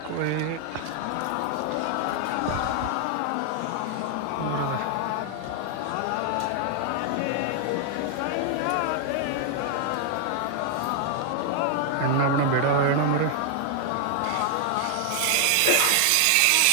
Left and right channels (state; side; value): different; both; correlation 0.00